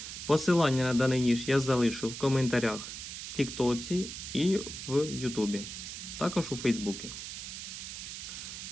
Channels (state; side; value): noise; right; hiss, 8 dB below the sound